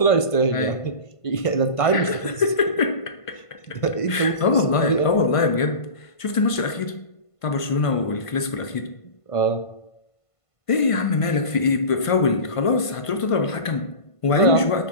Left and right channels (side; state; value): right; late; 1.5 ms